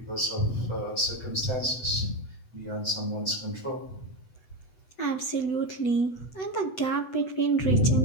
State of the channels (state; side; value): late; right; 7.9 ms